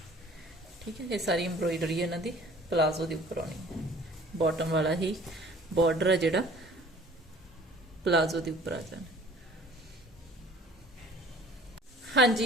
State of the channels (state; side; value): normal; both; correlation 0.50